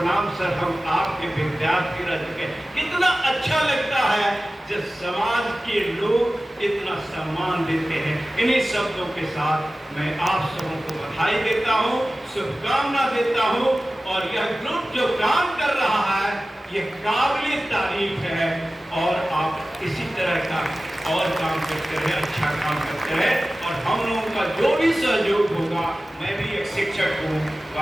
सर, हम आपके विद्यार्थी रह चुके हैं। कितना अच्छा लगता है जब समाज के लोग इतना सम्मान देते हैं। इन्हीं शब्दों के साथ मैं आप सबों को बधाई देता हूँ, शुभकामना देता हूँ। और यह ग्रुप जो काम कर रहा है ये काबिल तारीफ है और आप इसी तरह का और काम करते रहे, अच्छा काम करते रहे। और हम लोगों का जो भी सहयोग होगा, मैं भी एक शिक्षक हूँ,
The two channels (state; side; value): normal; both; correlation 0.96